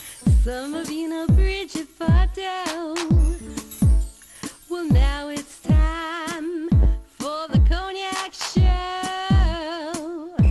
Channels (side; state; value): both; identical; correlation 1.00